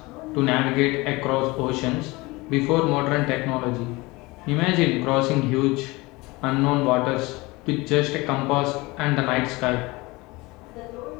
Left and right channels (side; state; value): right; quieter; 22.9 dB